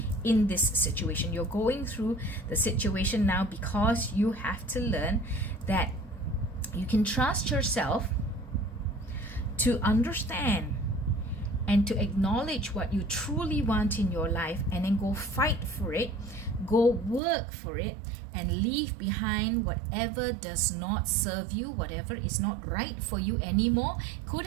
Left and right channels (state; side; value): drops out; left; at 17.2 s